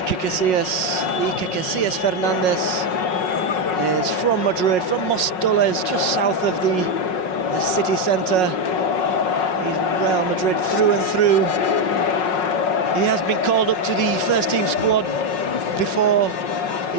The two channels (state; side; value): late; right; 5.5 ms